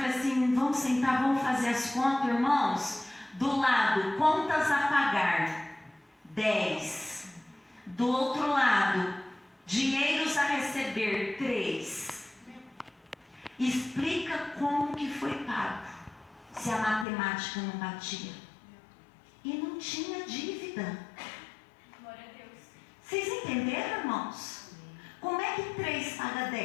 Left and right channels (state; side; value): drops out; right; at 17.1 s